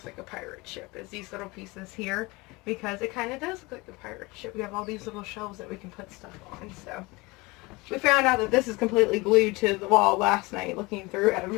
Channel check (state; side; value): quieter; right; 24.0 dB